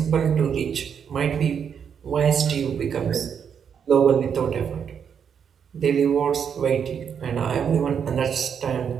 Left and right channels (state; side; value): quieter; left; 7.5 dB